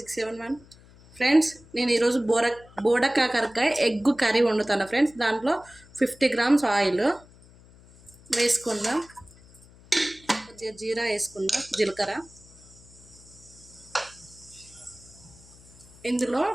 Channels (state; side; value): noise; left; hum, 24 dB below the sound